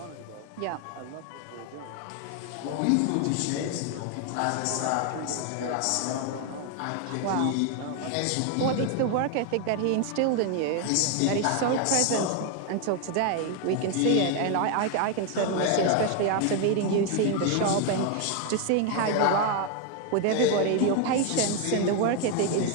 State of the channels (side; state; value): both; different; correlation 0.01